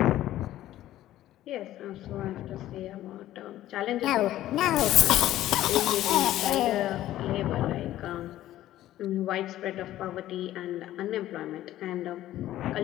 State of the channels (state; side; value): quieter; right; 13.9 dB